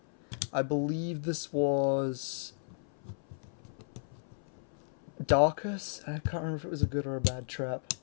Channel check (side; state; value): right; silent; 55 dB below the other